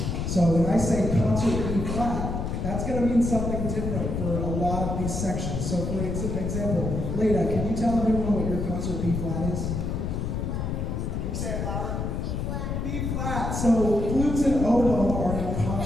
So when I say concert B flat, that's going to mean something different for a lot of these sections. So for example, Leda, can you tell everyone what your concert B flat is? Can you say it louder? B flat. B flat. So flutes and oboe are in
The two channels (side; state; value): left; noise; rumble, 2 dB below the sound